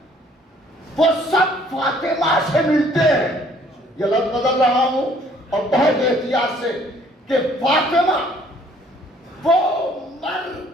وہ سب فاطمہ سے ملتے ہیں. یہ لفظ بدل رہا ہوں اور بہت احتیاط سے کہ فاطمہ وہ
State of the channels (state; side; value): normal; both; correlation 0.60